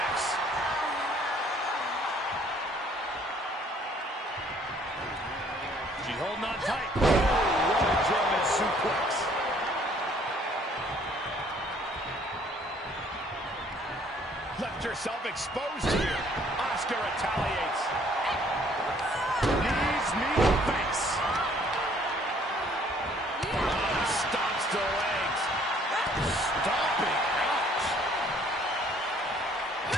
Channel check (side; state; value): both; normal; correlation 0.60